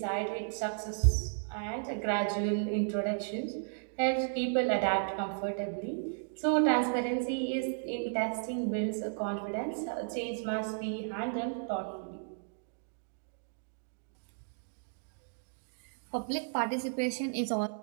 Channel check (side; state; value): left; silent; digital silence